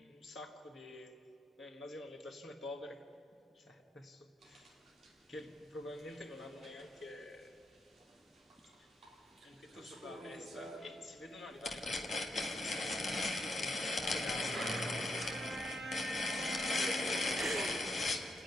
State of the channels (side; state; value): both; normal; correlation 0.80